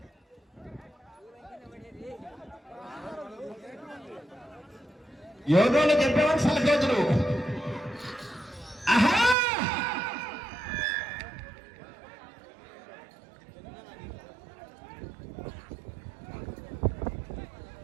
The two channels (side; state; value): left; drops out; at 9.3 s